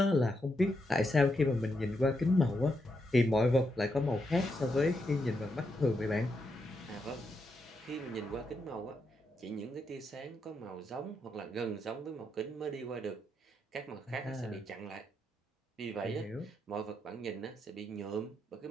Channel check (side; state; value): both; normal; correlation 0.82